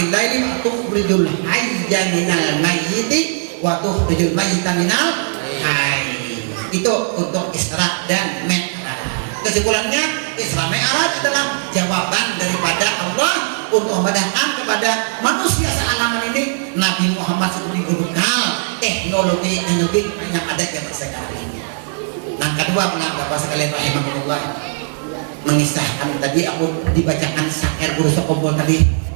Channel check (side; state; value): left; silent; digital silence